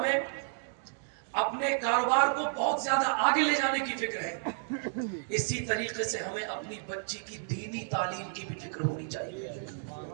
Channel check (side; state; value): left; silent; digital silence